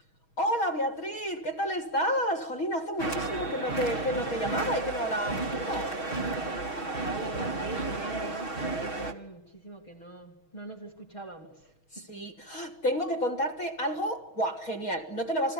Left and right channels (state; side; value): late; right; 6.3 ms